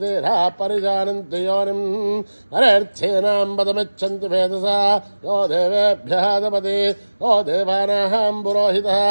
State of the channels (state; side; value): inverted; both; correlation -1.00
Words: देहा परिजानन्ति योनिम् नरेर्थेनां पदमिच्छन्ति वेदसा यो देवेभ्यः दपति यो देवानां पुरोहितः